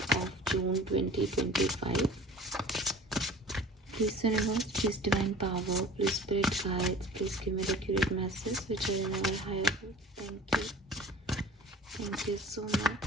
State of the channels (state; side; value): normal; both; correlation 0.42